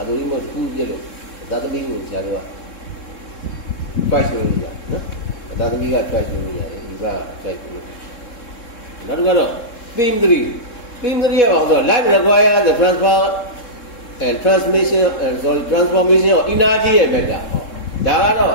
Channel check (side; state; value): right; late; 3.7 ms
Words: သမီမခုပြစ်လို့သာသမီကိုဆရာတို့က twice လို့ရနော်သာသမီက twice လို့ရတယ်ဒီက twice လို့နောက်တစ်ခါတော့ theme 3 ရပါတော့ life require the transfer and transformation of energy ရဲ့ဘက်ကဒါကတော့